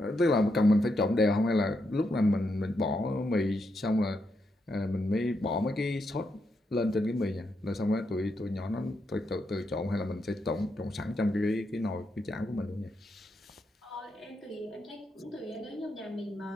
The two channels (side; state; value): both; normal; correlation 0.82